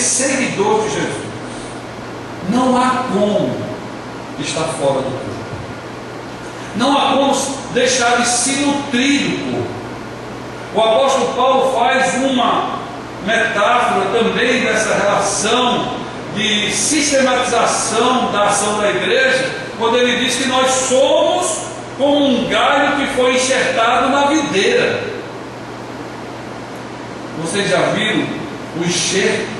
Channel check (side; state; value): both; identical; correlation 1.00